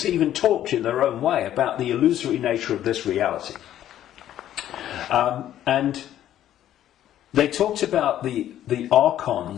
even talked in their own way about the illusory nature of this reality. And they talked about the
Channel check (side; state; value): right; quieter; 11.9 dB